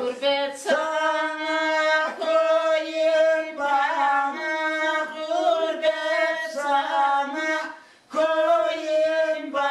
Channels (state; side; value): identical; both; correlation 1.00